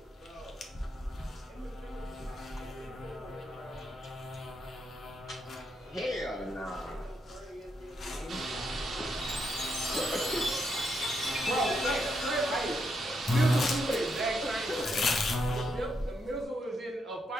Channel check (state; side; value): normal; both; correlation 0.79